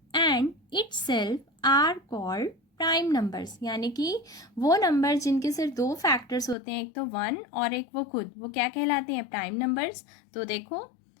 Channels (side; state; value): right; drops out; at 6.6 s